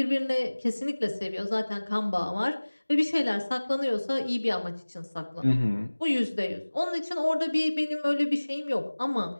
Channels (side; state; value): both; inverted; correlation -1.00